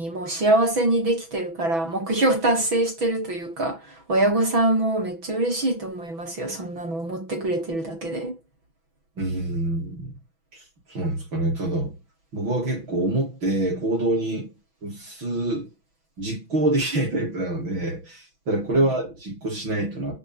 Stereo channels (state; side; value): late; left; 6.1 ms